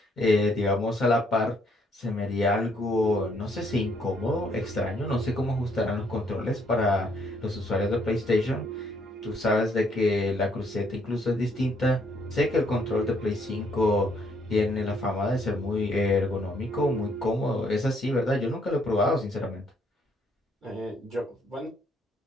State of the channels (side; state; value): both; normal; correlation 0.68